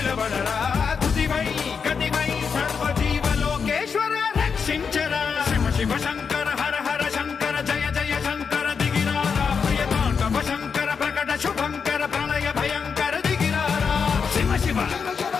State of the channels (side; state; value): right; quieter; 6.0 dB